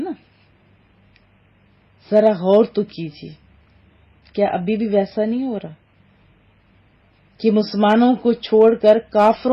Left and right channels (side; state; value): both; identical; correlation 1.00